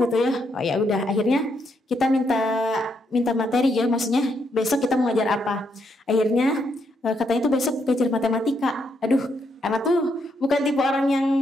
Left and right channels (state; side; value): normal; both; correlation 0.77